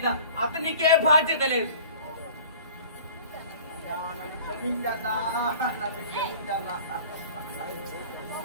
అతనికే బాధ్యత లేదు. క్షమించన్నా, నన్ను క్షమించన్నా.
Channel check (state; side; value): inverted; both; correlation -0.45